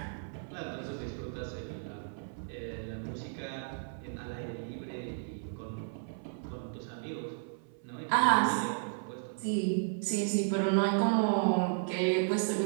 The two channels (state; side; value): silent; left; 55 dB below the other